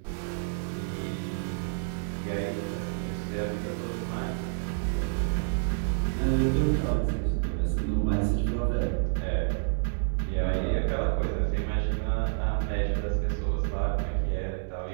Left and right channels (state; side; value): silent; left; 59 dB below the other